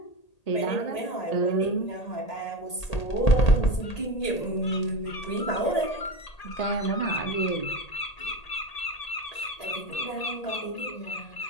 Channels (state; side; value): late; right; 1.8 ms